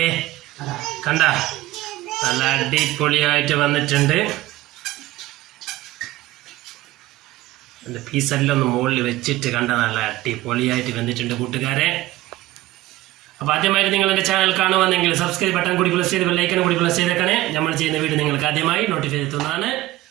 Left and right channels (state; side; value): quieter; left; 16.8 dB